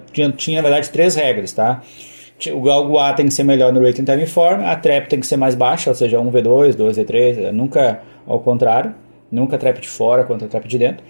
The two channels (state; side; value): inverted; both; correlation -1.00